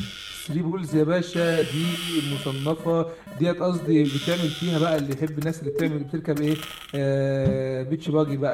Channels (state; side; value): identical; both; correlation 1.00